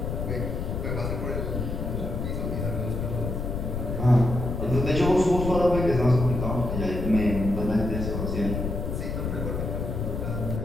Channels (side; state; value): left; noise; rumble, 3 dB below the sound